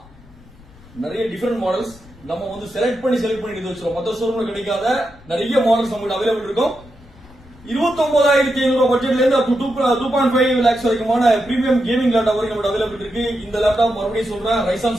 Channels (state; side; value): noise; left; rumble, 23 dB below the sound